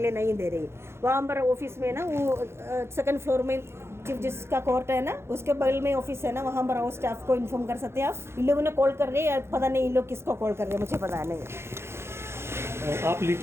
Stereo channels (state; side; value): late; left; 0.12 ms